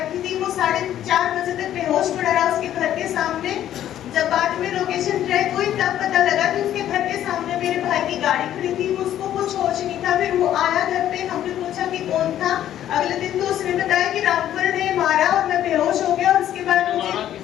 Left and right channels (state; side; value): quieter; right; 11.6 dB